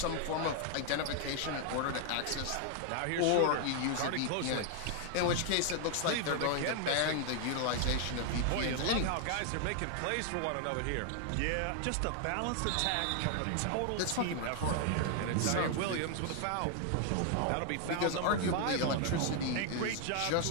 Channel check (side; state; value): both; different; correlation 0.00